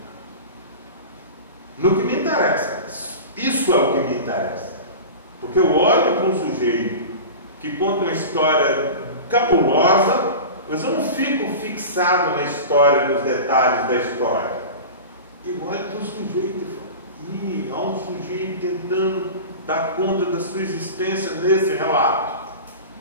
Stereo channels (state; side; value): inverted; both; correlation -0.31